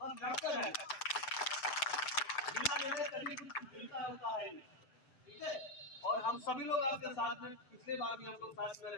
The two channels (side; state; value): right; late; 7.8 ms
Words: हम लड़ते रहें। बिना लड़े कभी कुछ मिलता होता है, ठीक है। और हम सभी लोग आपके साथ में, पिछले बार भी हम लोग साथ में